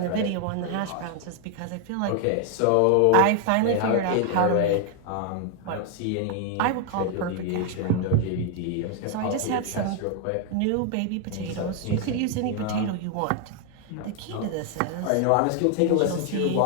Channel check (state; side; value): different; both; correlation 0.00